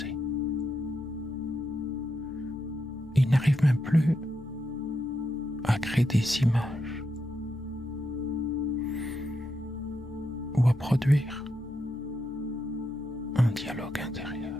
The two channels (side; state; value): both; normal; correlation 0.83